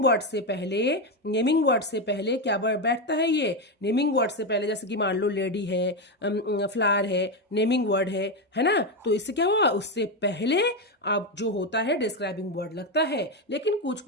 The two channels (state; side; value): normal; both; correlation 0.10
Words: वर्ड से पहले, नेमिंग वर्ड से पहले क्या बैठता है, ये नेमिंग वर्ड से पहले, जैसे कि मान लो लेडी है, फ्लावर है, नेमिंग वर्ड है ना, तो इससे क्या हुआ, उससे पहले अब जो होता है डिस्क्राइबिंग वर्ड लगता है। लेकिन कुछ